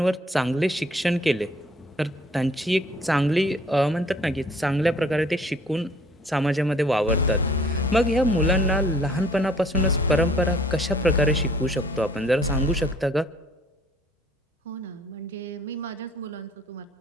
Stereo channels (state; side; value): normal; both; correlation 0.57